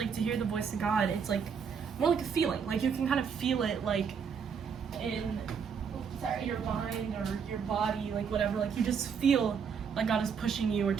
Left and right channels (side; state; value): left; quieter; 6.6 dB